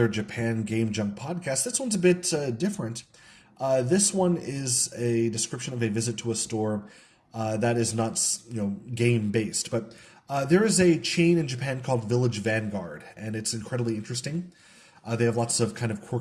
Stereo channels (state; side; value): identical; both; correlation 1.00